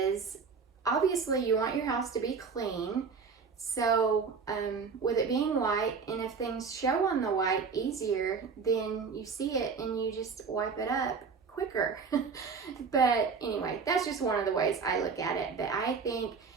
obviously you want your house to be clean. So with it being white, and if things show on the white easier, then you see it and you just wipe it up quicker. But anyway, that's just one of the ways I look at it. But I think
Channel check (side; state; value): left; quieter; 5.4 dB